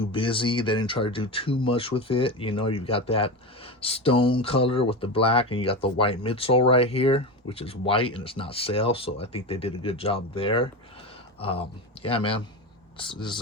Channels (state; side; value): normal; both; correlation 0.21